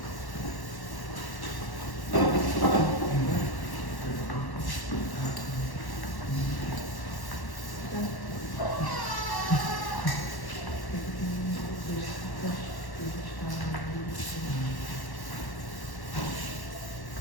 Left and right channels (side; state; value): right; late; 1.1 ms